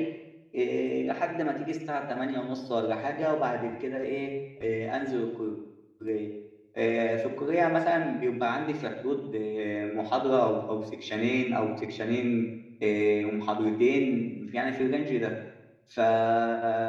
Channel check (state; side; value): identical; both; correlation 1.00